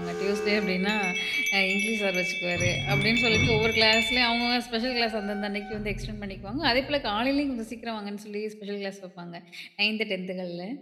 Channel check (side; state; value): both; identical; correlation 1.00